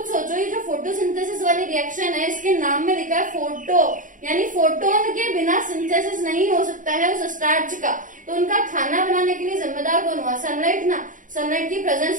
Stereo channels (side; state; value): left; late; 0.38 ms